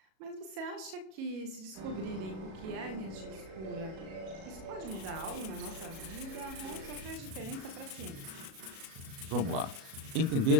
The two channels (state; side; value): late; left; 37 ms